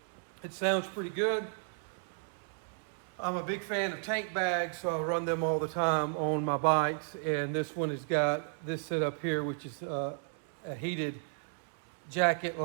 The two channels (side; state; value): left; silent; 55 dB below the other